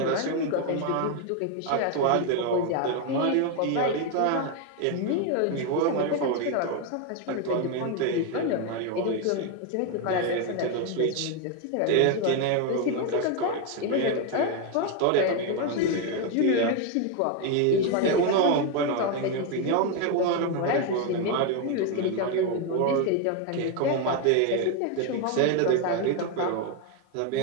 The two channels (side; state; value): both; different; correlation 0.01